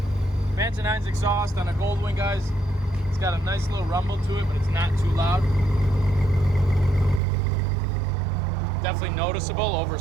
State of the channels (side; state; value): left; drops out; at 7.2 s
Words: Vance & Hines exhaust on a Goldwing, guys. It's got a nice little rumble to it, but it's not too loud. Definitely noticeable over